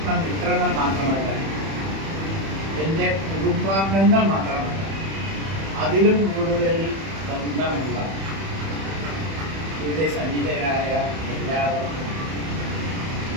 മാത്രമല്ല, എൻ്റെ കുടുംബാംഗങ്ങൾ മാത്രമല്ല, അതിലും കൂടുതൽ ബന്ധമുള്ള ഇവിടെ സന്നിധരായ എല്ലാവർക്കും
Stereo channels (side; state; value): left; late; 31 ms